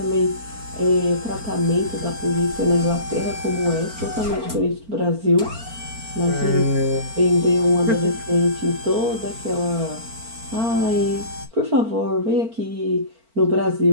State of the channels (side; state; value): left; late; 4.4 ms